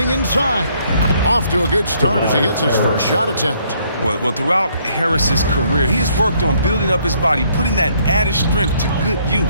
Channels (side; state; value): both; inverted; correlation -0.67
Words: inside. Off to a good start as he hits his first shot attempt. Well, throughout Harris's career, he has worked on building up his body, putting that added strength to good